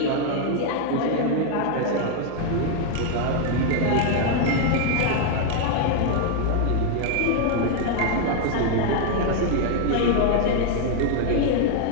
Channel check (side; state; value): both; different; correlation 0.00